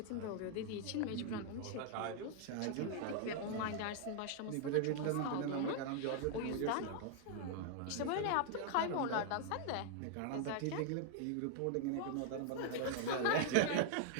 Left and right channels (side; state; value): both; different; correlation 0.00